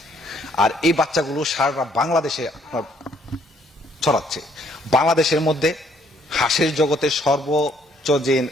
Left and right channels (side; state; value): both; normal; correlation 0.66